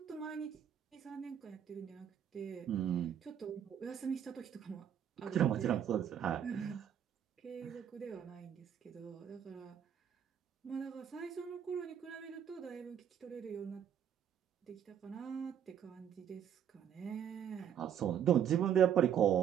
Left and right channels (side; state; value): left; quieter; 9.1 dB